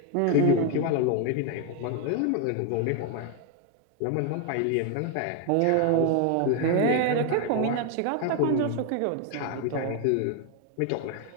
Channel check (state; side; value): different; both; correlation 0.01